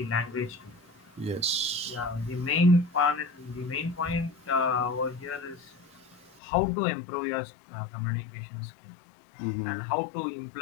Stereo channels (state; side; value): drops out; right; at 6.4 s